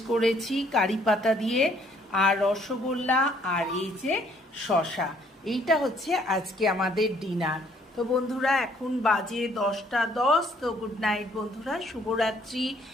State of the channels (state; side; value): normal; both; correlation 0.64